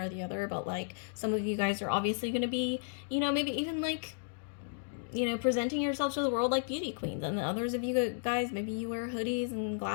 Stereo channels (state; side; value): silent; right; digital silence